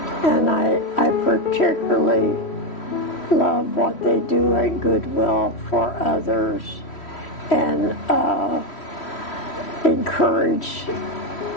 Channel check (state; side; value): late; right; 3.1 ms